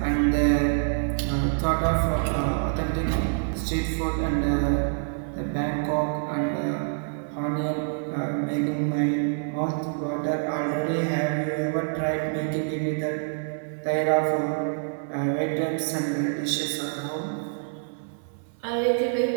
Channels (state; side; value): silent; left; 58 dB below the other